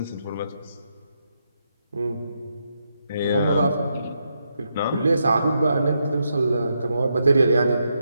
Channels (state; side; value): inverted; both; correlation -0.81